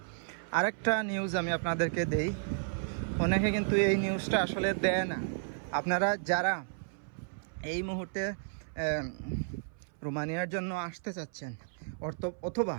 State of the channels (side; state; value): left; silent; 56 dB below the other